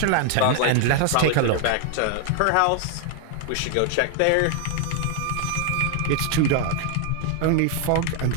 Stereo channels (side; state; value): both; different; correlation 0.00